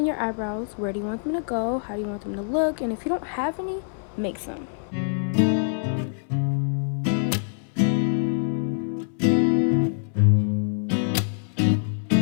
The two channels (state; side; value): silent; right; 62 dB below the other